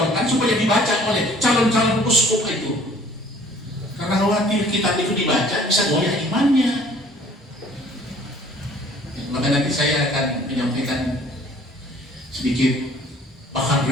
supaya dibaca oleh calon-calon uskup itu? Karena khawatir kitab itu dibaca bisa goyah imannya. Maka nanti saya akan menyampaikan sedikit bahan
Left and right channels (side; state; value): both; normal; correlation 0.54